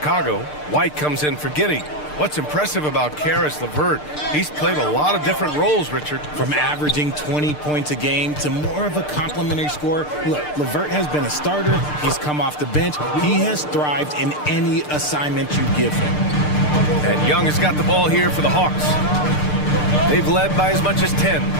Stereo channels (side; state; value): right; late; 6.7 ms